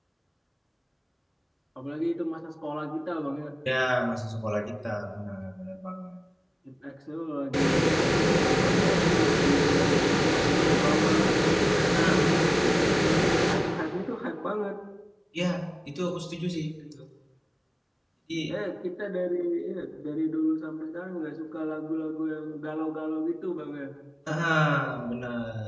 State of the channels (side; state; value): both; identical; correlation 1.00